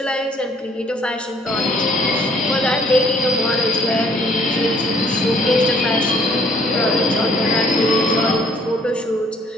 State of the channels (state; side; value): normal; both; correlation 0.62